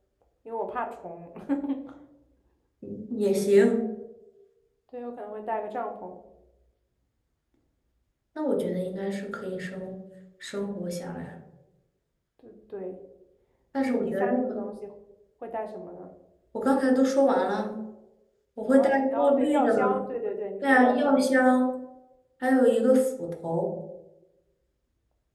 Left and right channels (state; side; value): identical; both; correlation 1.00